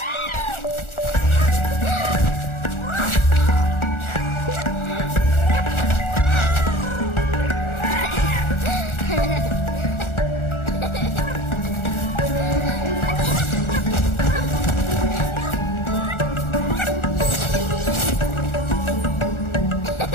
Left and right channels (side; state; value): right; late; 1.4 ms